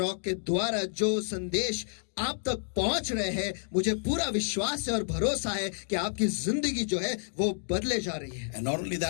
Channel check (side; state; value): right; silent; digital silence